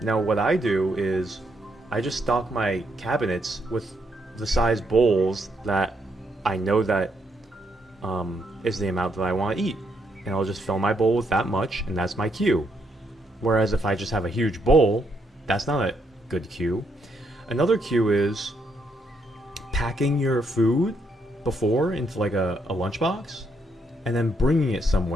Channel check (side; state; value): both; normal; correlation 0.76